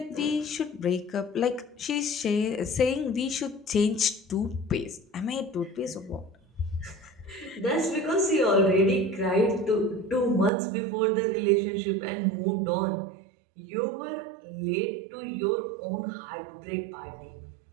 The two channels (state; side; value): drops out; left; at 10.5 s